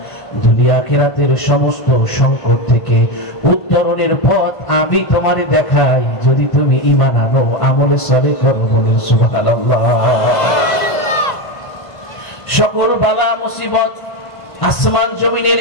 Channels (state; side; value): late; right; 1.5 ms